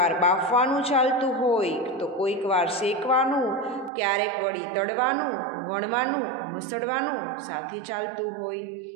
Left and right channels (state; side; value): drops out; left; at 3.9 s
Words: બાફવાનું ચાલતું હોય તો કોઈક વાર શેકવાનું, ક્યારેક વળી તળવાનું, વણવાનું, મસળવાનું સાથે ચાલતું હોય.